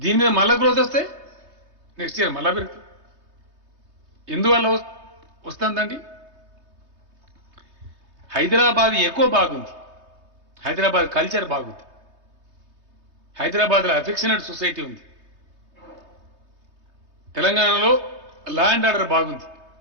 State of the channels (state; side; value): late; left; 3.2 ms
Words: మీద మళ్ళా గ్రోత్ వస్తే నెక్స్ట్ ఇయర్ మళ్ళా పెరుగుతుంది. ఎందువల్ల వస్తుందండి? హైదరాబాద్ ఎక్కువ బాగుంది, హైదరాబాద్ కల్చర్ బాగుంది, హైదరాబాద్లో అఫెక్షనేట్ సొసైటీ ఉంది, తెలంగాణలో లా అండ్ ఆర్డర్ బాగుంది,